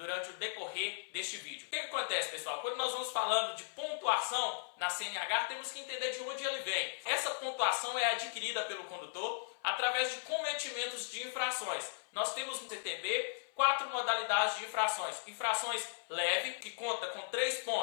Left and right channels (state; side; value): silent; right; 53 dB below the other